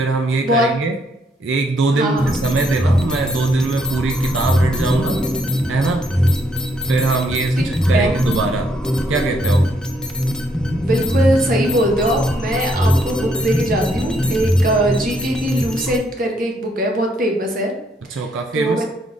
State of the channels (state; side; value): normal; both; correlation 0.72